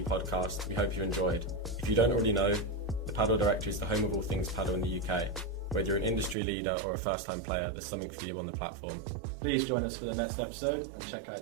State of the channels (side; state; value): left; drops out; at 6.4 s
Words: Podcast. We hope you enjoyed. If you don't already know, the Padel Directory is the home of all things paddle in the UK. Whether you're an industry leader or a first-time player, there's something for you on the platform. Please join us for the next episode and check